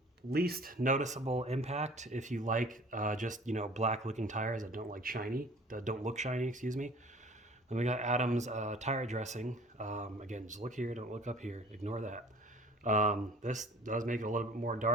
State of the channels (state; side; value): normal; both; correlation 0.48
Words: least noticeable impact if you like just, black looking tires that don't look shiny, excuse me. Then we got Adams tire dressing. Again, just look here, don't look up here, ignore that. This does make it a little bit more